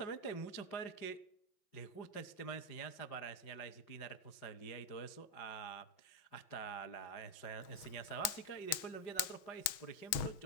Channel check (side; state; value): right; late; 6.2 ms